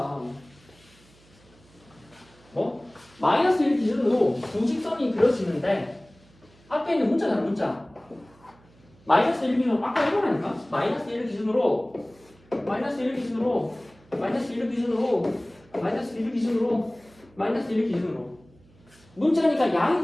뭐? 마이너스 1 기준으로 두 직선이 그려지는데 앞에 있는 문자잖아 문자 마이너스 1 기준으로 아까 이거라니까 마이너스 1 기준으로 마이너스 1 기준으로 마이너스 1 기준으로 마이너스 1 기준으로 마이너스 1 기준으로 문자니까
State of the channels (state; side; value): noise; right; hum, 28 dB below the sound